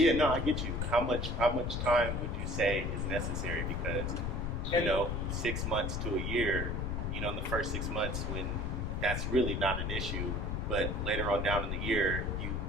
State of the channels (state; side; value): noise; left; rumble, 1 dB below the sound